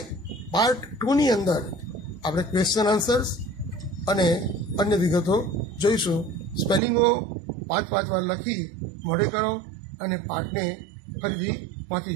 પાર્ટ 2ની અંદર આપણે ક્વેશ્ચન આન્સર્સ અને અન્ય વિગતો જોઈશું. સ્પેલિંગો 5 વાર લખી મોઢે કરો અને પાઠને ફરીથી વાંચી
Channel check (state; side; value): drops out; left; at 6.8 s